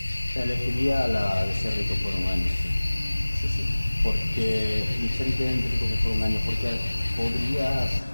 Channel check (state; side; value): inverted; both; correlation -1.00